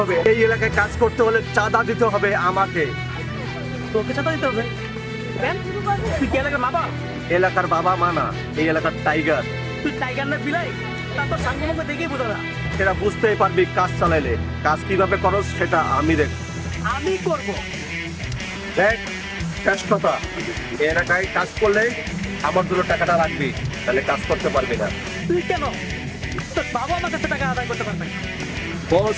হবে। এই এলাকায় কাজ করতে হলে চাঁদা দিতে হবে আমাকে। তোকে চাঁদা দিতে হবে কেন? তুই কি এলাকার বাবা? এলাকার বাবা মা না, এই এলাকার টাইগার। তুই টাইগার না বিলাই? তা তোর সাঙ্গে মুখে দেখেই বোঝা না। সেটা বুঝতেই পারবি কাজ চালাইলে। কাজ কিভাবে করস সেটা আমি দেখ। আমি করবো। দেখ শেষ কথা, এই এলাকায় কাজ করলে আমার জন্য টাকাটা রাখবি, তাহলে কাজ করতে পারবি না। তুই কেন? তোর বাবা আমার কাছে টাকা আদায় করতে পারবে।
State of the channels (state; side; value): identical; both; correlation 1.00